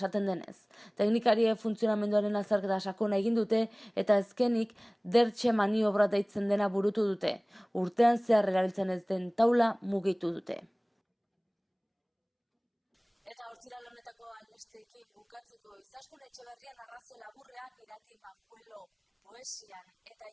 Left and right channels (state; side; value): identical; both; correlation 1.00